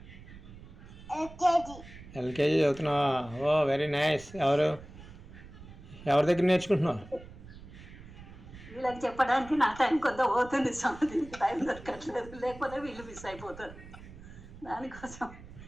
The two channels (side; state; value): right; noise; rumble, 17 dB below the sound